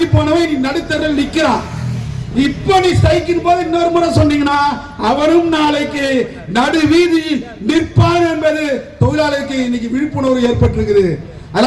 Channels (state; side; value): identical; both; correlation 1.00